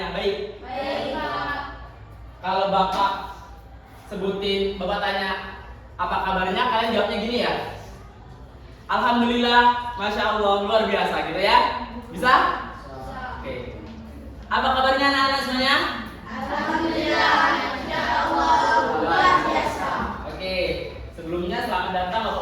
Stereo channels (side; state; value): both; identical; correlation 1.00